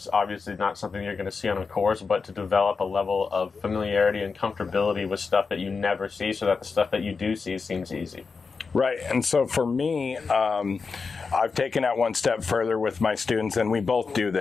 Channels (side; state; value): right; quieter; 4.9 dB